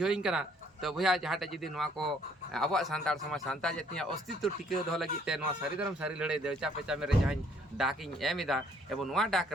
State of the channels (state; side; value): normal; both; correlation 0.63